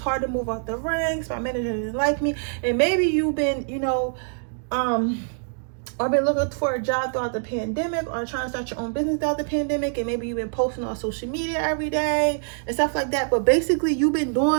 to move up the ranks, my manager didn't like me. And maybe you've been or been looking for a job throughout the pandemic, or trying to start your own business throughout the pandemic, and maybe you've been posting on social media every day and stuff like that. But basically you've been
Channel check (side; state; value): left; silent; 62 dB below the other